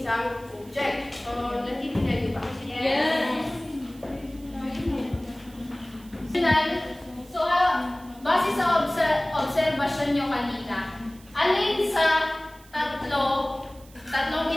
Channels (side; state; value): right; noise; hiss, 25 dB below the sound